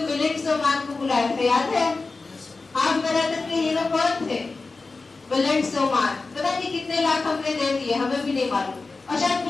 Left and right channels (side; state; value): right; quieter; 3.8 dB